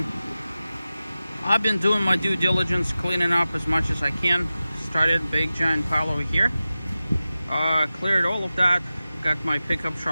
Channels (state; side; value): inverted; both; correlation -0.95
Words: I've been doing my due diligence, cleaning up as much as I can. Started big giant pile over here. Cleared all of that. Got my pickup